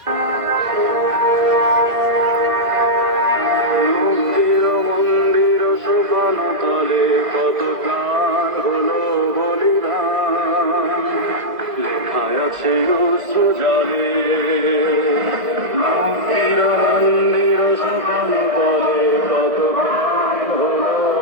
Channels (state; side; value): late; left; 2.0 ms